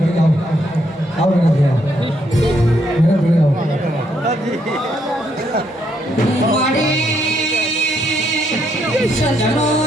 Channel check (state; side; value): normal; both; correlation 0.74